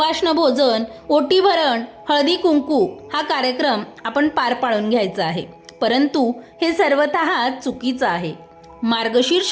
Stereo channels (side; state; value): both; identical; correlation 1.00